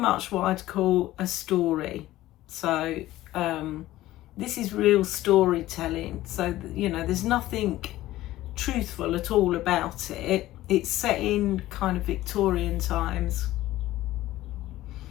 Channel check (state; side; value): quieter; right; 15.7 dB